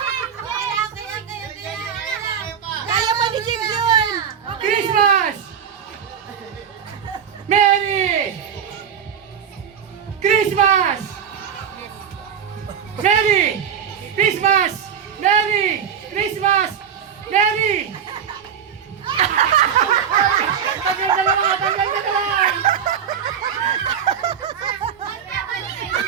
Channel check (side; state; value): left; quieter; 7.9 dB